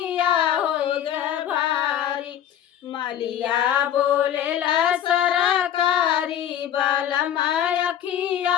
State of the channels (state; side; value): quieter; right; 10.4 dB